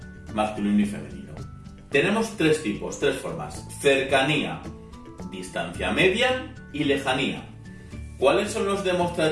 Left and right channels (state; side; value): identical; both; correlation 1.00